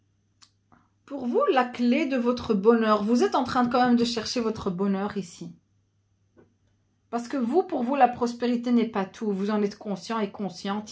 Pour vous, la clé de votre bonheur, vous êtes en train quand même de chercher votre bonheur ici. Parce que vous, pour vous, la prospérité n'est pas tout. Vous en êtes conscient et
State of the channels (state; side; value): identical; both; correlation 1.00